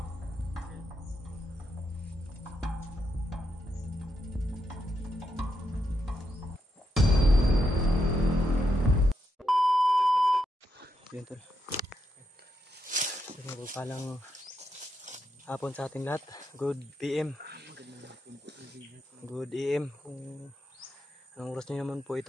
Yun tol. Palang hapon sa ating lahat. Good PM. Good AM. Kung anong oras nyo naman po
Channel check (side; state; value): both; normal; correlation 0.81